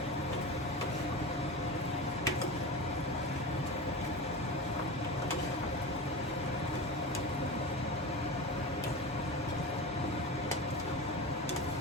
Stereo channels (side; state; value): both; normal; correlation 0.26